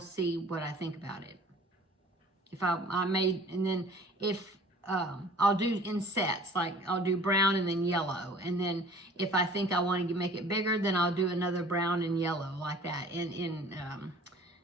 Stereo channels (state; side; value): normal; both; correlation 0.49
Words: see what I think about it. If I made, and then if I'll do in sets, like I'll do brown and then yellow, and then if I think I want to make it bigger, then I'll do another brown and yellow like that, and